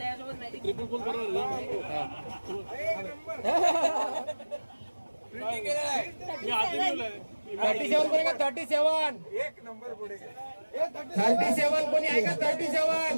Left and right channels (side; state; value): both; inverted; correlation -1.00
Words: $37 कोणी का 37? एक नंबर पुढे. 37 कोणी आहे का